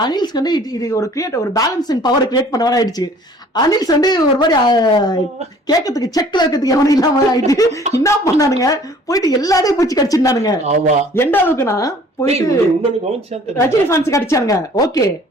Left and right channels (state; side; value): normal; both; correlation 0.53